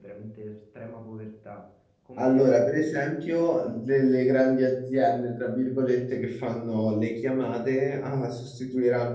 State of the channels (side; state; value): both; identical; correlation 1.00